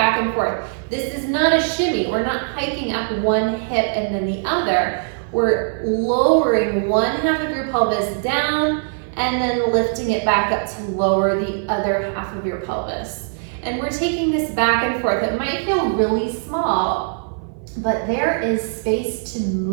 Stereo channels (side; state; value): left; silent; 57 dB below the other